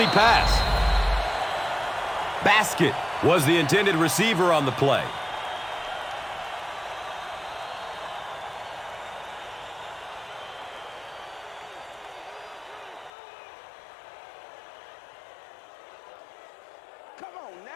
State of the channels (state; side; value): drops out; right; at 13.1 s